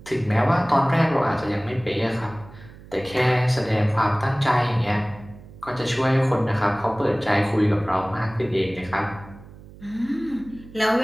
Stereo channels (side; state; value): right; noise; hum, 19 dB below the sound